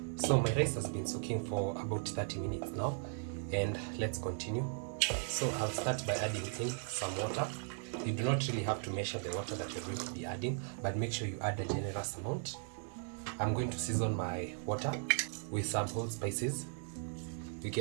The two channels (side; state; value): left; silent; 53 dB below the other